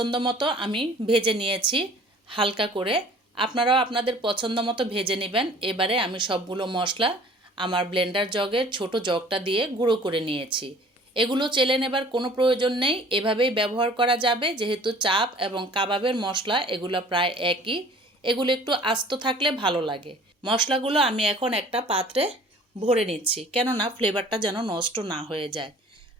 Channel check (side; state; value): both; normal; correlation 0.50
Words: মতো আমি ভেজে নিয়েছি হালকা করে। আপনারাও আপনাদের পছন্দ মতো ভেজে নেবেন। এবারে আমি সবগুলো মশলা আমার ব্লেন্ডার জগের ছোট জগটা দিয়ে গুঁড়ো করে নিয়েছি। এগুলো চেলে নেবার কোনো প্রয়োজন নেই, এভাবেই ব্যবহার করা যাবে, যেহেতু চাপ এবং কাবাবের মশলা এগুলো প্রায় একই। এগুলো একটু আস্ত থাকলে ভালো লাগে। মশলাগুলো আমি এখন একটা পাত্রে ভরে নিচ্ছি, কেননা ফ্লেভারটা যেন নষ্ট না হয়ে যায়।